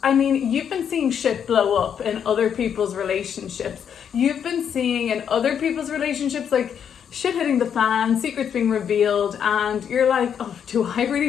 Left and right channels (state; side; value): quieter; right; 8.2 dB